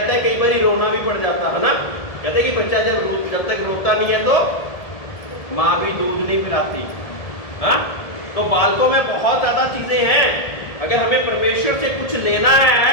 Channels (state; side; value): late; right; 1.7 ms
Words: हैं। कई बार रोना भी पड़ जाता है ना। कहते कि बच्चा जब तक रोता नहीं है तो माँ भी दूध नहीं पिलाती। हाँ, तो बालकों में बहुत ज्यादा चीजें हैं। अगर हमें परमेश्वर से कुछ लेना है